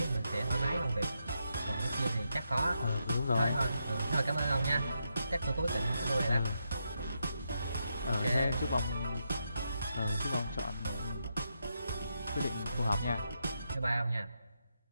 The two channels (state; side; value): inverted; both; correlation -0.83